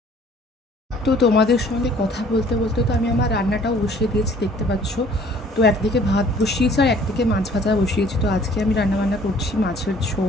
তো তোমাদের সঙ্গে কথা বলতে বলতে তো আমি আমার রান্নাটাও বসিয়ে দিয়েছি, দেখতে পাচ্ছ। তো একদিকে ভাত বসিয়েছি আর একদিকে মাছ ভাজা বসিয়েছি। তো আজকে আমি রান্নাবান্না করছি মাছের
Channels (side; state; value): both; normal; correlation 0.55